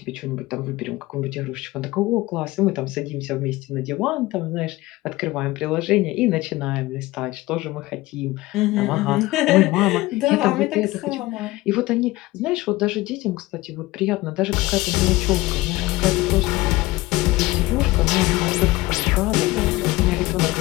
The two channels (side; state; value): right; quieter; 19.4 dB